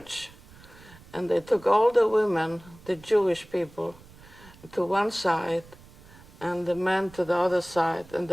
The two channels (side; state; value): right; noise; rumble, 22 dB below the sound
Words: and they took all the women, the Jewish people, to one side, and the men to the other side, and